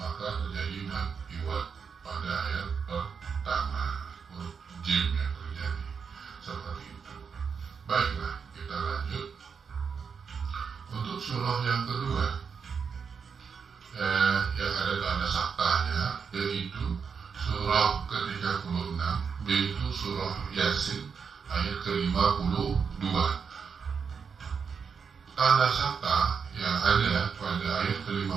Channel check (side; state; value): left; quieter; 6.1 dB